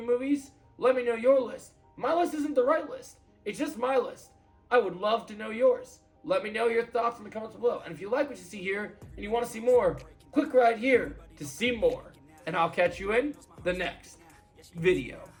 movies. Let me know your list. My list isn't the right list. It's just my list. I would love to know yours. Let me know your thoughts in the comments below. And if you like what you see here and you want to see more, click right here to see more. And I'll catch you in the next video.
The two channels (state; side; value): identical; both; correlation 1.00